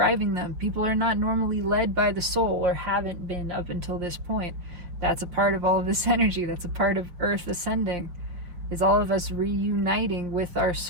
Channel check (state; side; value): late; left; 5.9 ms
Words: them. People are not normally led by the soul, or haven't been up until this point. That's a part of all of this energy. That's a part of Earth ascending, is all of us reuniting with our